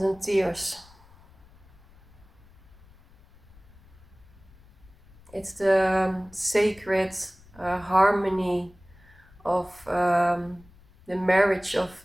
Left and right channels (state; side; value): noise; left; rumble, 26 dB below the sound